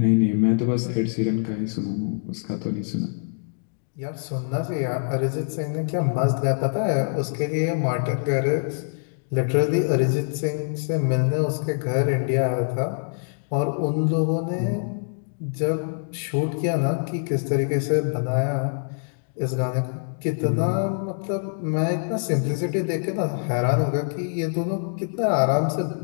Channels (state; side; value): silent; right; digital silence